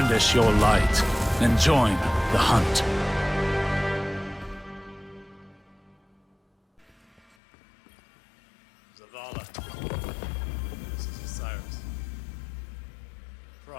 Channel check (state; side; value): drops out; right; at 7.4 s